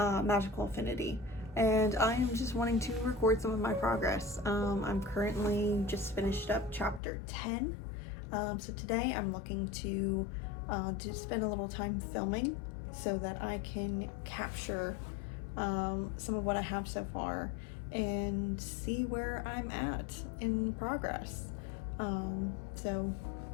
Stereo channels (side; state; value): right; drops out; at 7.0 s